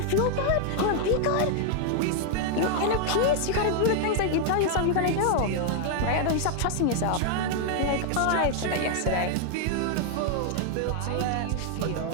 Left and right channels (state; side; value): different; both; correlation 0.00